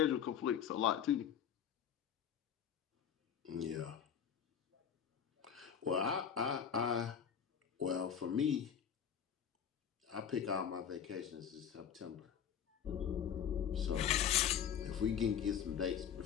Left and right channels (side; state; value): right; quieter; 8.4 dB